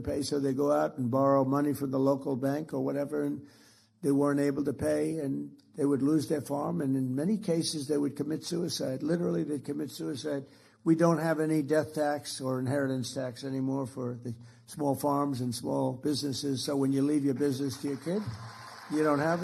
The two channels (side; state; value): both; identical; correlation 1.00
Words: pay. So they go out and borrow money from the local bank or whatever. And they weren't able to pay and they would lose their farm. And in many cases, they would commit suicide. Literally, they'd commit suicide. We don't have any death tax or inheritance tax anymore for the small farms and small businesses. So when you leave your business to your kid, you don't have